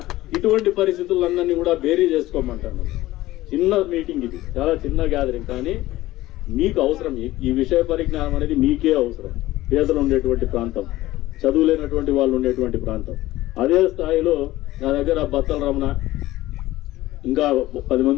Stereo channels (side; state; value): right; quieter; 16.7 dB